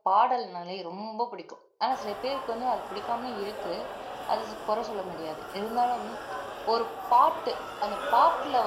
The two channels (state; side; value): identical; both; correlation 1.00